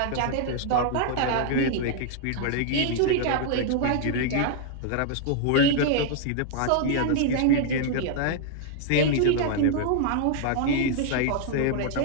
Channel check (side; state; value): both; different; correlation 0.00